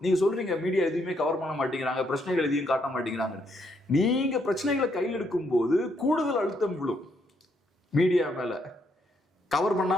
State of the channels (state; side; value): normal; both; correlation 0.74